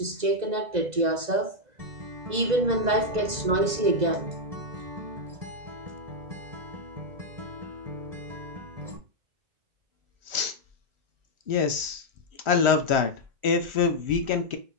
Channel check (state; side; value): late; left; 2.0 ms